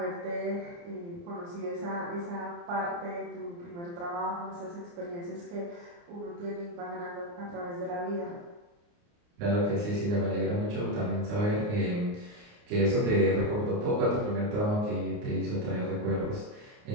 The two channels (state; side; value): late; left; 29 ms